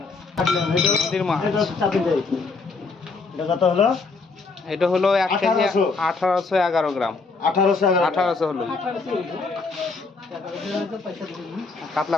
নদীর মাছ কত হলো? এটা হলো 1 কেজি 1811 গ্রাম। 1800 হলো। কাতলা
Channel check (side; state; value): right; quieter; 4.2 dB